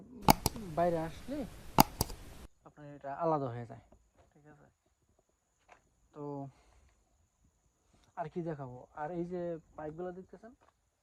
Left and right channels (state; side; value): identical; both; correlation 1.00